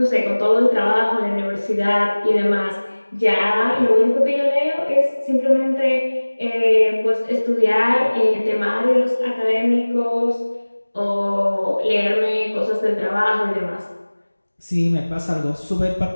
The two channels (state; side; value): inverted; both; correlation -1.00